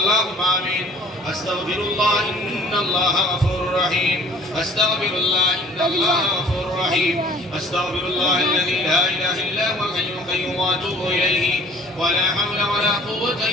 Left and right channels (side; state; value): both; normal; correlation 0.51